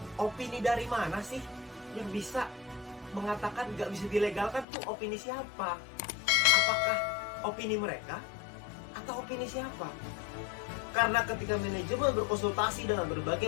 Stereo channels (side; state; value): right; drops out; at 4.7 s